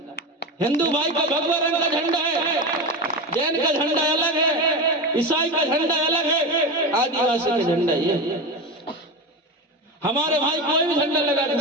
हिंदू भाई का भगवा रंग का झंडा है, जैन का झंडा अलग है, ईसाई का झंडा अलग है, आदिवासी का झंडा ये। हमारे भाई कोई भी झंडा लगा के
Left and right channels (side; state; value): both; normal; correlation 0.22